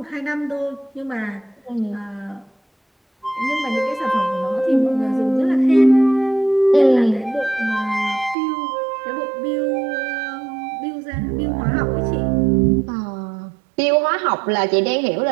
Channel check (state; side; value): drops out; left; at 8.3 s